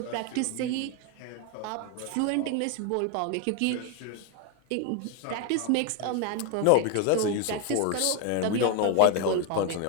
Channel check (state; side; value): different; both; correlation 0.01